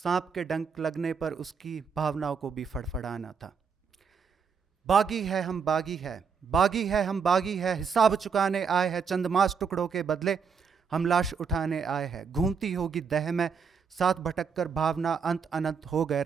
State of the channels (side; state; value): left; quieter; 6.0 dB